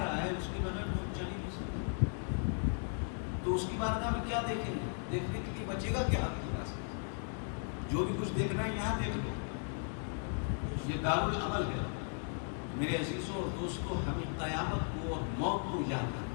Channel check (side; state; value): right; silent; 53 dB below the other